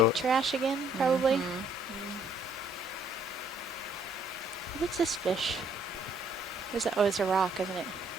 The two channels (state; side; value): normal; both; correlation 0.65